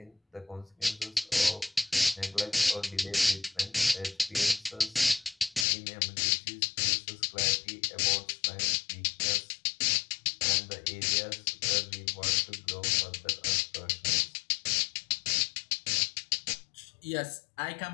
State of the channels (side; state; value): right; drops out; at 5.7 s